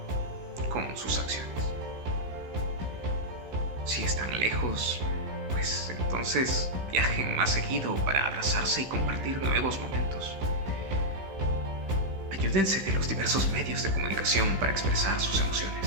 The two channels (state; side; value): late; left; 15 ms